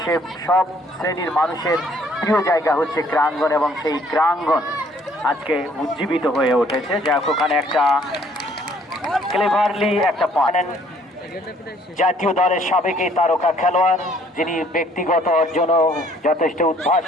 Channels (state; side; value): normal; both; correlation 0.61